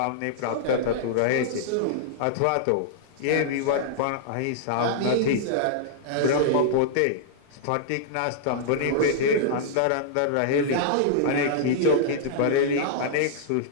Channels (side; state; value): both; different; correlation -0.02